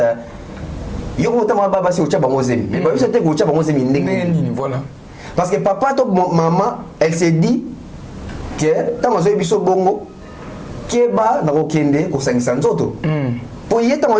yo ko tama baba si ucha bango zemi mais biso te ko ucha bango zemi ndenge voilà parce que papa to maman elle s'est dit que tama zo biso bongo ke ba na ko kende ko sangisa nzoto pour y être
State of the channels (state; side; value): identical; both; correlation 1.00